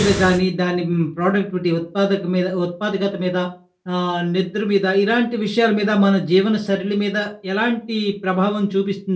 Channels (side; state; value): both; identical; correlation 1.00